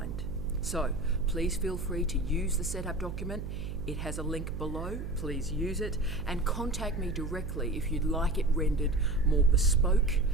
So please feel free to use the setup document. It has a link below, please use it, and contact me directly if you'd like it rendered more bespoke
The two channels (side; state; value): right; noise; hum, 6 dB below the sound